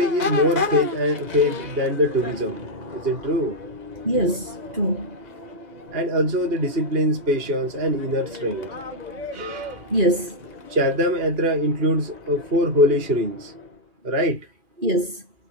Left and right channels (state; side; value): late; left; 2.5 ms